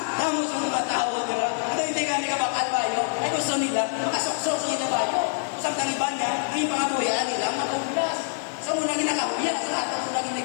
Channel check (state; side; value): silent; right; digital silence